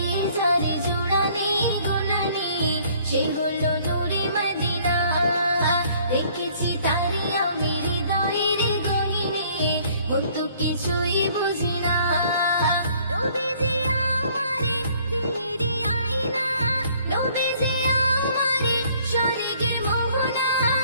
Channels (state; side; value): inverted; both; correlation -0.59